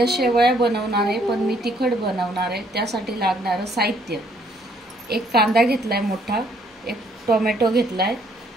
शेवया बनवणार आहे, पण मी तिखट बनवणार आहे। त्यासाठी लागणारं साहित्य: एक कांदा घेतलाय मोठा, एक टोमॅटो घेतलाय,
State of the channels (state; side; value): normal; both; correlation 0.66